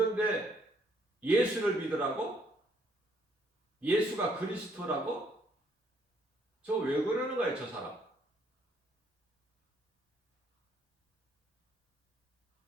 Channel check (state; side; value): normal; both; correlation 0.68